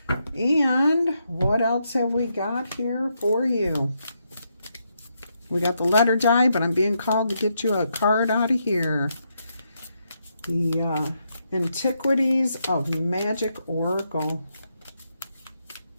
And what else have we got here for you? We got the letter die, but I'm being called to get you a card out of here. The Antiquities of Magic Oracle.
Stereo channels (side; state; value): both; inverted; correlation -0.80